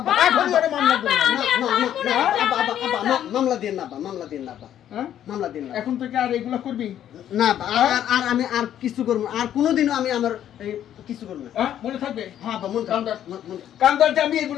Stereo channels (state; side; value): quieter; right; 10.8 dB